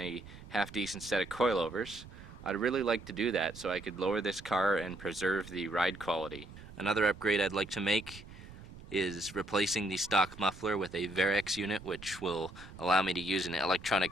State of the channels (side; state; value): right; noise; rumble, 16 dB below the sound